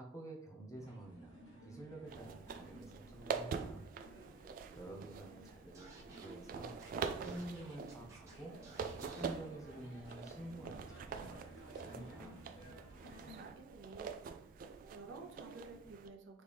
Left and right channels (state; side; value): quieter; left; 4.1 dB